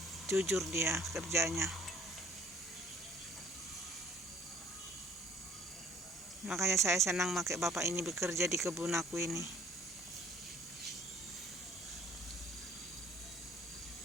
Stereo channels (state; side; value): normal; both; correlation 0.55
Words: Jujur dia kerjanya. Makanya saya senang pakai bapak ini bekerja di kebun aku ini.